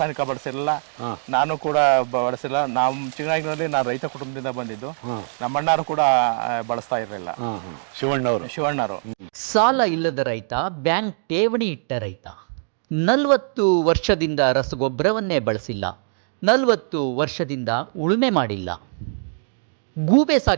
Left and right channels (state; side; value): silent; left; digital silence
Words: ಬಳಸಿರಲಿಲ್ಲ, ನಾನು ಕೂಡ ಬಳಸಿಲ್ಲ. ನಮ್ಮ ಚಿಕ್ಕನಾಗಿನಲ್ಲಿ ನಾನು ರೈತ ಕುಟುಂಬದಿಂದ ಬಂದಿದ್ದು, ನಮ್ಮ ಅಣ್ಣರು ಕೂಡ ಬಳಸ್ತಾ ಇರಲಿಲ್ಲ. ಶಿವಣ್ಣವರು ಸಾಲ ಇಲ್ಲದ ರೈತ, ಬ್ಯಾಂಕ್ ಠೇವಣಿ ಇಟ್ಟ ರೈತ, 40 ವರ್ಷದಿಂದ ರಸಗೊಬ್ಬರವನ್ನೇ ಬಳಸಿಲ್ಲ, 40 ವರ್ಷದಿಂದ ಉಳುಮೆ ಮಾಡಿಲ್ಲ. ಗೂಬೆ